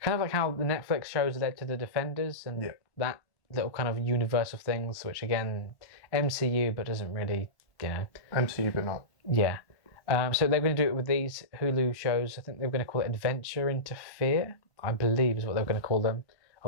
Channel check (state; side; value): late; right; 1.1 ms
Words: of like how the Netflix shows led to the Defenders and that little kind of universe of things, which again, MCU, but doesn't really, MCU, but not. Yeah. So they're going to do it with these Hulu shows. I think they were going to call it Adventure into Fear, I believe is what they were going to call them.